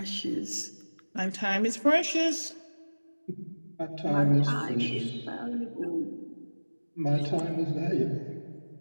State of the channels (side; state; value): both; inverted; correlation -1.00